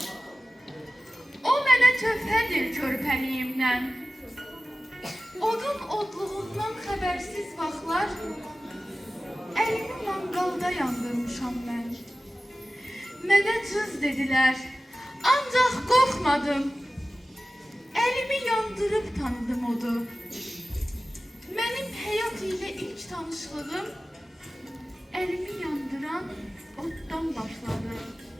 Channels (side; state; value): both; normal; correlation 0.96